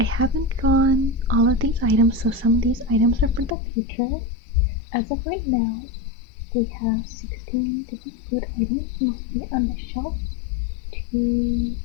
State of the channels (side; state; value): right; drops out; at 3.6 s